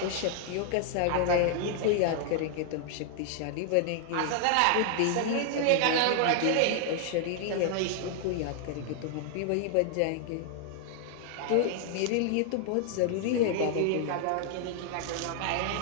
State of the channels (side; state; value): both; different; correlation 0.00